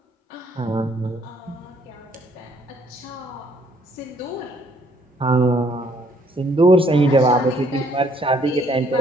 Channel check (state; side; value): normal; both; correlation 0.65